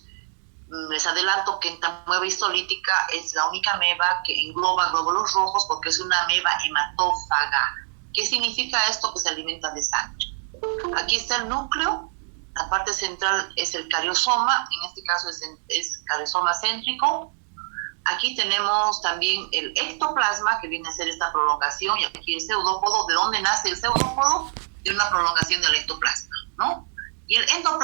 Les adelanto que entamueba histolítica es la única ameba que engloba glóbulos rojos porque es una ameba hematófaga. ¿Qué significa esto? Que se alimenta de sangre. Aquí está el núcleo. La parte central es el cariosoma, en este caso es cariosoma céntrico. Aquí tenemos también el ectoplasma, que viene a ser esta prolongación, y aquí el pseudópodo. ¿De dónde nace el pseudópodo? De una prolongación del ectoplasma, ¿no? Y el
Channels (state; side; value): silent; left; digital silence